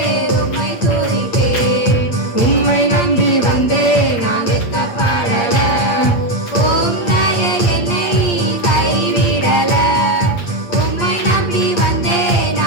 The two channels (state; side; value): late; right; 8.5 ms